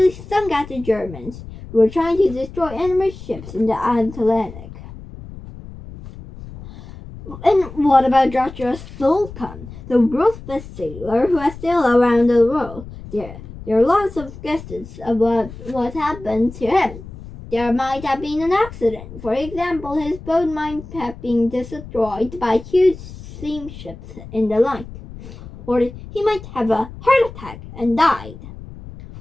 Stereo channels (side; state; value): left; noise; rumble, 15 dB below the sound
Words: sunk at the Germans, who were trying to destroy enemy ships in the Atlantic. And what about Joshua Slocum, the world's best sailor who has sailed around the world? There are lots of guesses about what happened to him. There might have been an accident. For example, his boat might have been destroyed by huge steamships in the line. Or he might have a heart attack and died.